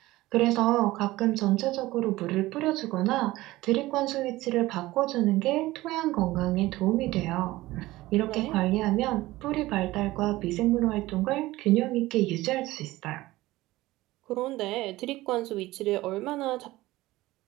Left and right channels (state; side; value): quieter; left; 18.1 dB